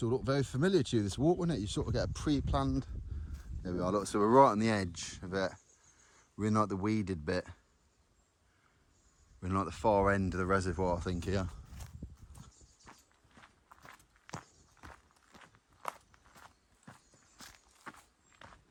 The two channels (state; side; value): identical; both; correlation 1.00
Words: will look very familiar to you, this walk, won't it? You sort of get a pre-planned... There we are, look, so we're right on the edge of it. We're in like the weeded bit. We're in like the far end of the reservoir, I think, here.